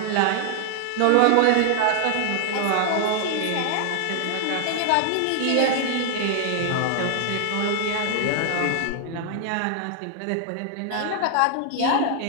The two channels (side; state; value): both; different; correlation 0.00